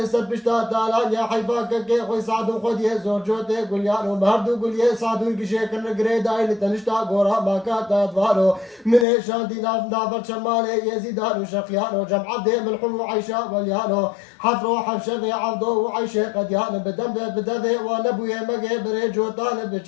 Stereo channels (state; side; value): drops out; right; at 9.1 s